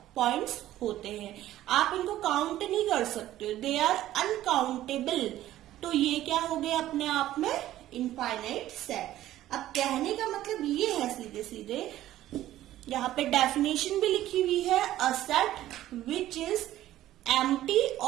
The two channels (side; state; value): left; quieter; 13.8 dB